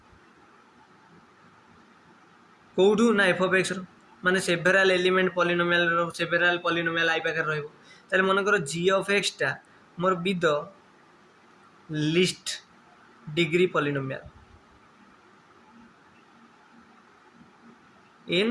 कौटू ना एफ ऑफ एक्स रो माने सेवेरल एलिमेंट पॉलिनोमियल रो सेवेरल पॉलिनोमियल आई पाखे रहइबो ताले मन कर जी ऑफ एक्स टा मोर be the least degree polynomial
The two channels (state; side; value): identical; both; correlation 1.00